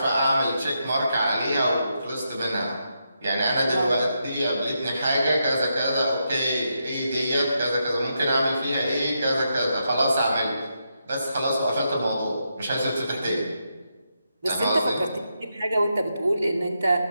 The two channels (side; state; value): both; inverted; correlation -0.83